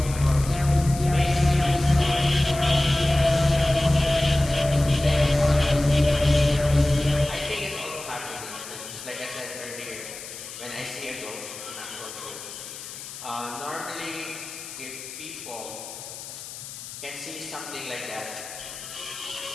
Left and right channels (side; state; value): left; noise; hiss, 12 dB below the sound